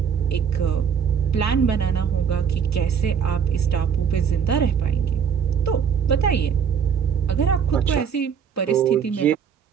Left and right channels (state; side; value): quieter; left; 7.3 dB